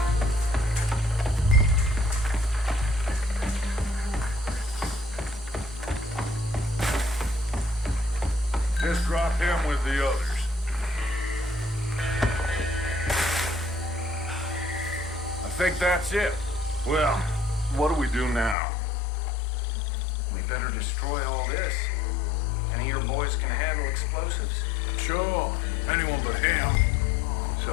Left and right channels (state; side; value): drops out; right; at 18.6 s